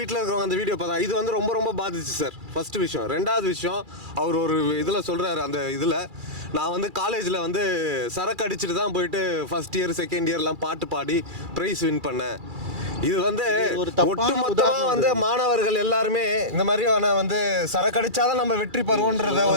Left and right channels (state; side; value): late; left; 2.3 ms